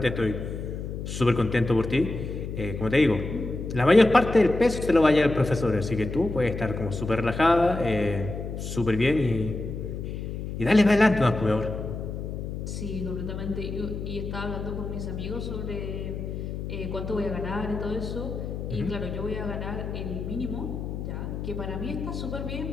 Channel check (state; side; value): noise; left; hum, 6 dB below the sound